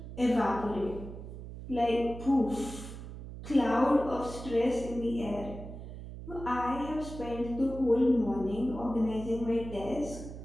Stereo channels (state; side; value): noise; right; hum, 11 dB below the sound